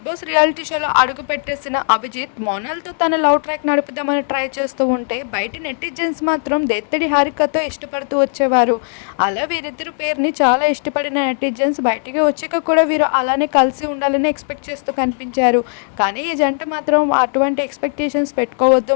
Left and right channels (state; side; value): silent; right; digital silence